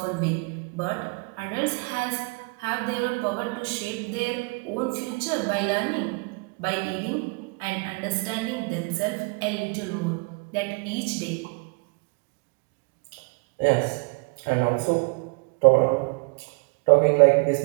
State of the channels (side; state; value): left; quieter; 31.7 dB